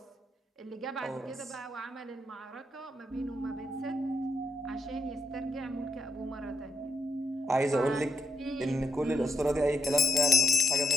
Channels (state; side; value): normal; both; correlation 0.80